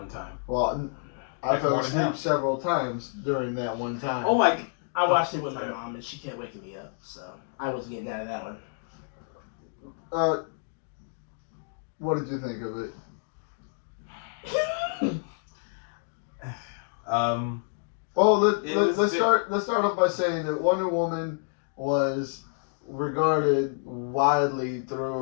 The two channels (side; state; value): right; silent; digital silence